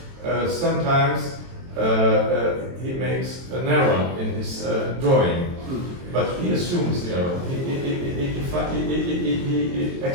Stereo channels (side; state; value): left; late; 23 ms